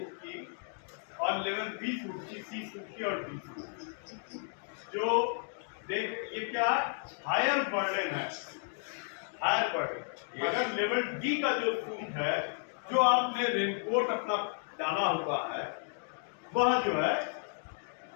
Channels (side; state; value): right; silent; 56 dB below the other